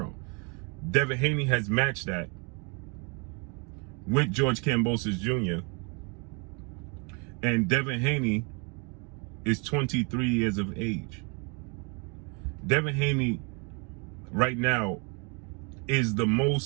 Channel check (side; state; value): left; quieter; 33.2 dB